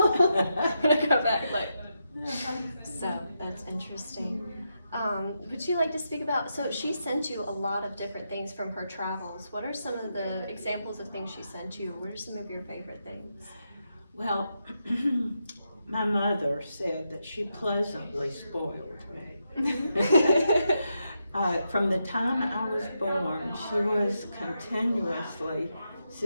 When I go back, like, so that's interesting. Would you like to speak about, so she sent you a lot of different things from her travels. What are some of the examples of things she sent you? What are some of your favorite things? Well, my mother said that she pleasantly spoiled me. From the time I was born, she was continuously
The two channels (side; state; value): both; inverted; correlation -0.84